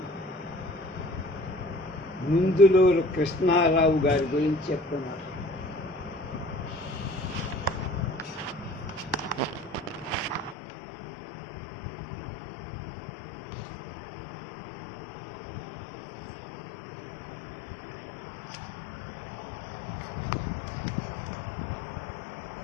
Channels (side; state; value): right; drops out; at 10.6 s